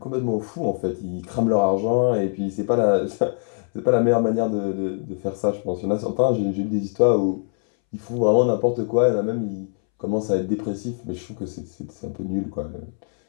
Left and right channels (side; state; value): right; silent; 63 dB below the other